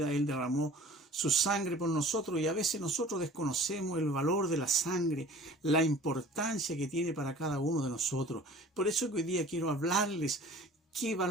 Él derramó su sangre por nosotros y a veces nosotros desconocemos el valor de la sangre, la importancia que tiene para cada uno de nosotros. Por eso que hoy día quiero hablarles qué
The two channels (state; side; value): normal; both; correlation 0.46